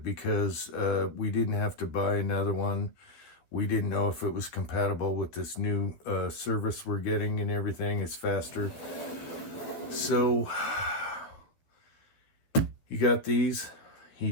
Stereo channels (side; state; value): right; late; 11 ms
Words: because we didn't have to buy another one. We didn't know if it was compatible with this new service we're getting and everything. It's faster. So he got these. He